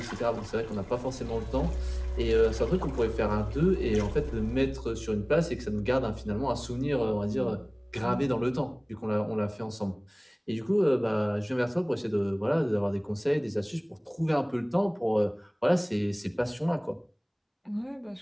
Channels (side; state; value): both; identical; correlation 1.00